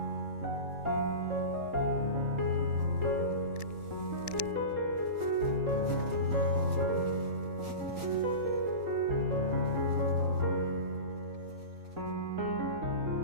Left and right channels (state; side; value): late; left; 3.8 ms